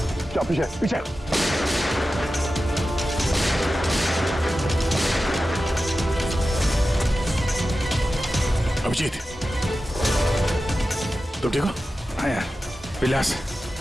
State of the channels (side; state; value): both; normal; correlation 0.93